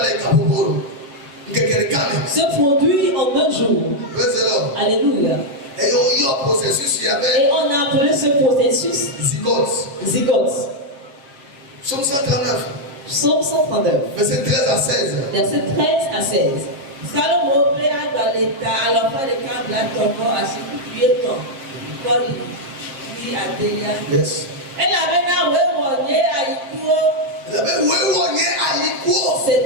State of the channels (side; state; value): left; late; 7.4 ms